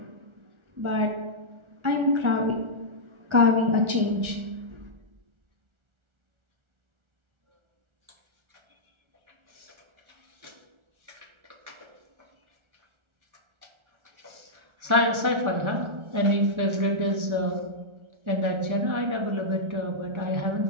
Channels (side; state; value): left; late; 1.4 ms